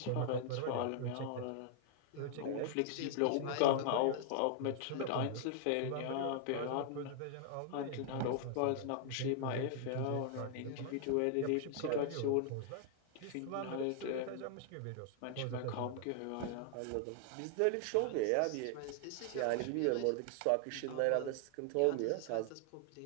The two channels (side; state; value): both; different; correlation 0.00